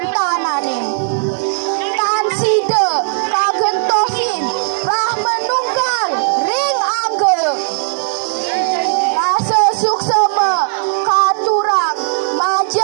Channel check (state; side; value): silent; left; digital silence